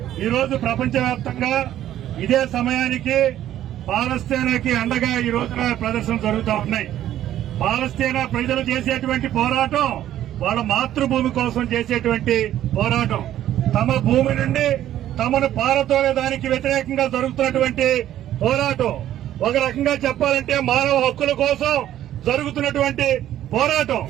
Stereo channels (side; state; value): left; quieter; 12.2 dB